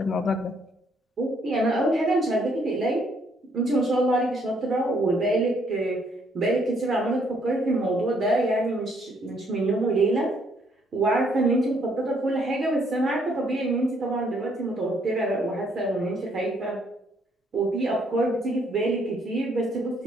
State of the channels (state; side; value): normal; both; correlation 0.68